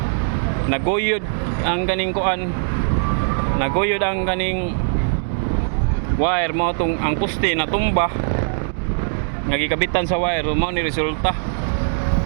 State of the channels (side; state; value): left; silent; digital silence